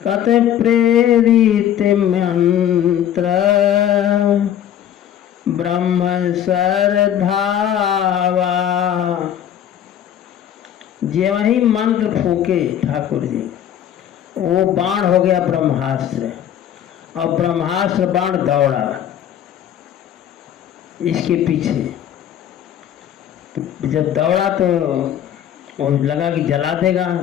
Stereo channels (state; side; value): quieter; right; 10.3 dB